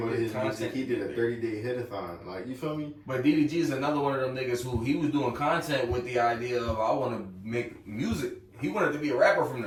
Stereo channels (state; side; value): identical; both; correlation 1.00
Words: his music? He did a 30-day hit-a-thon. Like, you feel me? But DDG is another one of them niggas who he was doing content with the idea of, I want to make music. He wanted to be a rapper from